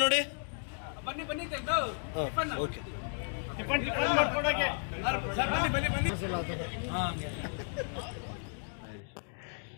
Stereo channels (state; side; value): silent; right; 55 dB below the other